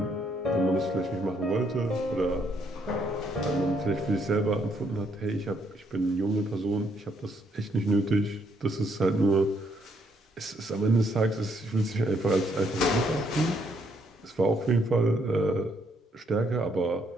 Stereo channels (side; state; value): both; normal; correlation 0.72